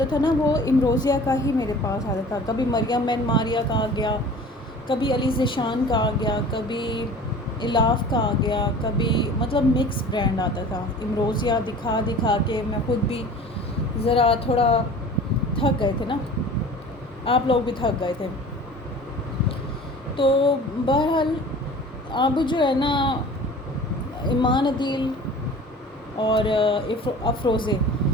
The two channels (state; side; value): normal; both; correlation 0.43